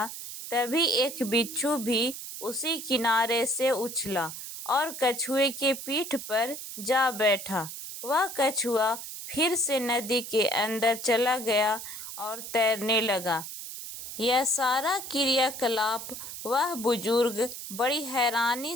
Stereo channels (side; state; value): right; noise; hiss, 9 dB below the sound